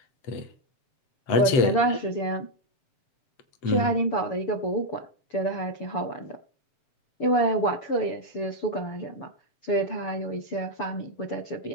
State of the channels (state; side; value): late; right; 7.8 ms